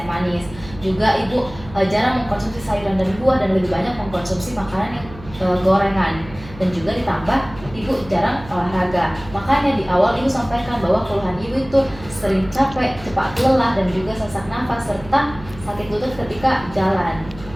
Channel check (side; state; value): right; noise; hum, 17 dB below the sound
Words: manis. Juga ibu jarang mengkonsumsi sayuran dan buah dan lebih banyak mengkonsumsi makanan yang gorengan. Dan juga ditambah ibu jarang olahraga. Makanya di awal ibu sampaikan bahwa keluhan ibu itu sering capek, cepat lelah dan juga sesak nafas serta sakit lutut ketika jalan.